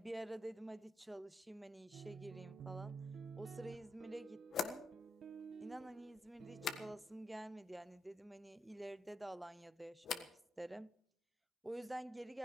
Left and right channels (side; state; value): both; normal; correlation 0.84